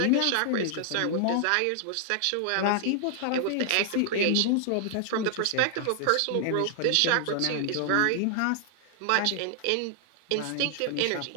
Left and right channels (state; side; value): different; both; correlation 0.00